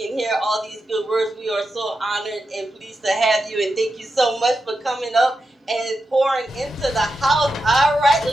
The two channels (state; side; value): normal; both; correlation 0.88